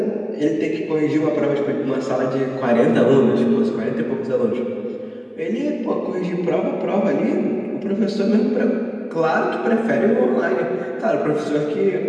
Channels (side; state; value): both; identical; correlation 1.00